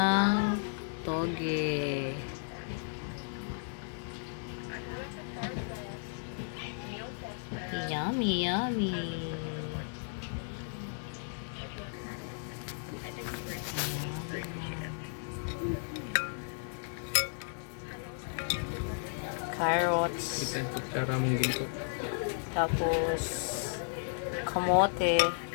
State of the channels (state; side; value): silent; right; digital silence